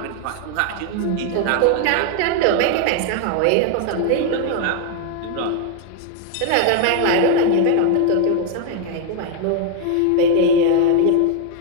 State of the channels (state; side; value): different; both; correlation 0.00